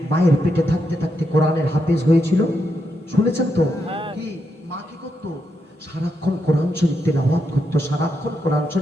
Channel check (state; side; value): normal; both; correlation 0.82